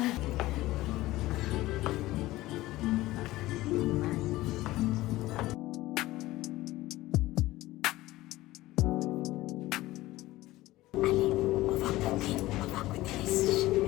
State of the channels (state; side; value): quieter; right; 17.5 dB